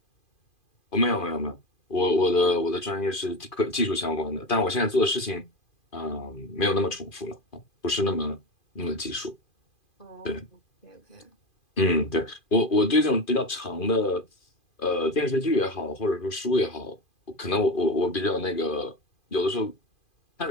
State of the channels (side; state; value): right; late; 2.4 ms